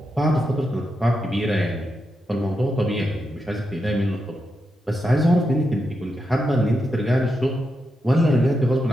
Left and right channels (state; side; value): normal; both; correlation 0.86